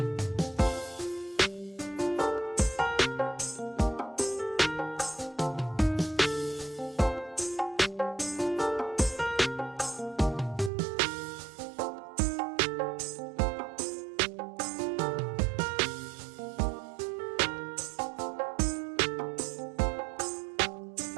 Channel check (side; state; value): left; drops out; at 10.7 s